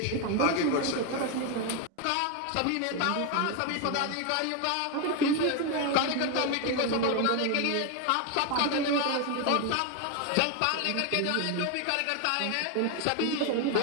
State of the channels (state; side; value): different; both; correlation 0.01